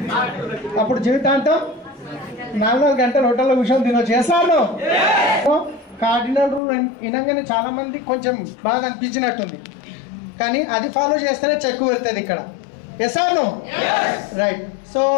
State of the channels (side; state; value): right; drops out; at 6.6 s